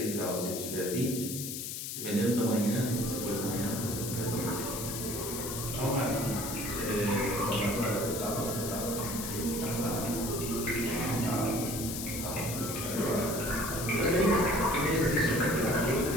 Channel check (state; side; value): noise; left; hiss, 5 dB below the sound